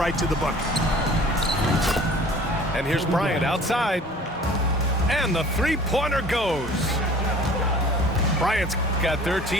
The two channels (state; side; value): normal; both; correlation 0.47